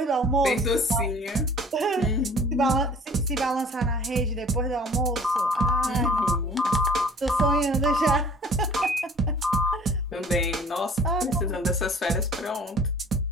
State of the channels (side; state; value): both; normal; correlation 0.49